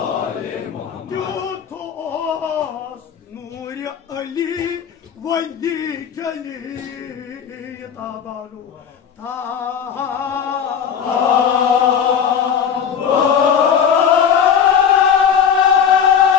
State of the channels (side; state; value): right; quieter; 7.7 dB